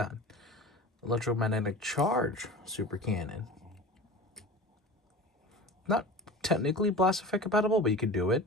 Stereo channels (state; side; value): normal; both; correlation 0.35